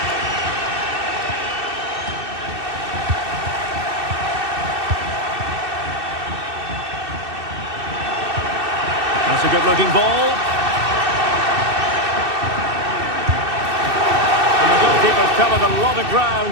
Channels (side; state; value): left; late; 2.6 ms